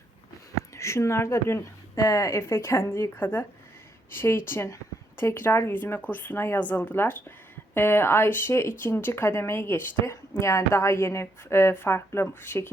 Şunlar da dün Efe kendi yıkadı. Şey için tekrar yüzme kursuna yazıldılar. Ayşe ikinci kademeyi geçti. Yani daha yeni farklı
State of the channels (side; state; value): both; normal; correlation 0.76